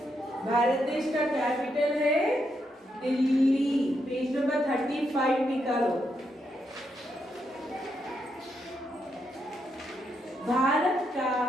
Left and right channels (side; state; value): both; normal; correlation 0.80